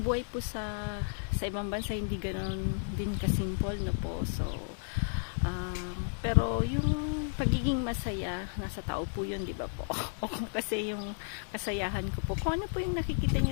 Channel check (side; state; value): right; silent; 56 dB below the other